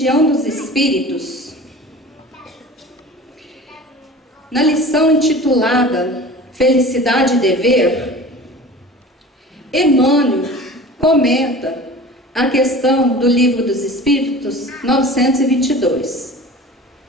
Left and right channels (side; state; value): both; normal; correlation 0.39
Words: dos Espíritos, na lição intitulada Felicidade e Dever, Emmanuel comenta a questão do Livro dos Espíritos 922.